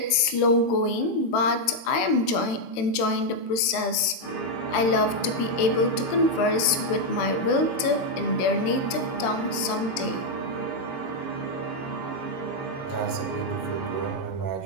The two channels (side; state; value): right; late; 22 ms